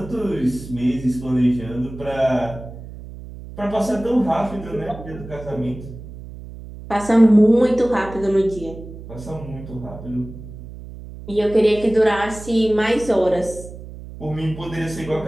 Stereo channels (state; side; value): noise; right; hum, 14 dB below the sound